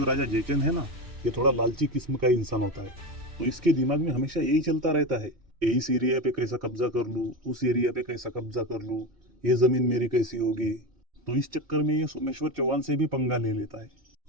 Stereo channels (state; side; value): late; left; 2.8 ms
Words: राजा जयचंद है ना, ये थोड़ा लालची किस्म का इंसान होता है। तो इसके दिमाग में हमेशा यही चलता रहता है, इस एरिया पे कैसा कब्जा कर लूँ, उस एरिया पे कैसा कब्जा कर लूँ, ये जमीन मेरी कैसी होगी। तो इस चक्कर में ये सोमेश्वर चौहान से भी पंगा ले लेता है।